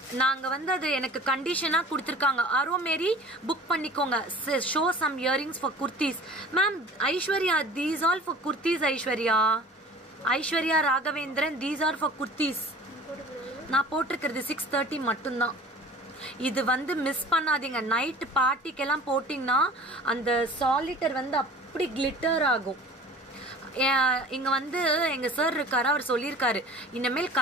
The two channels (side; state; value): both; normal; correlation 0.44